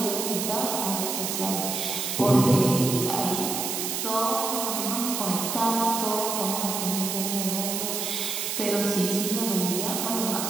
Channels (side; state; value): right; noise; hiss, 2 dB below the sound